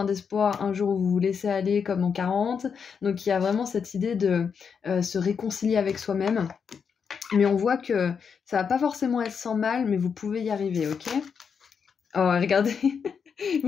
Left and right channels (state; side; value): quieter; right; 6.5 dB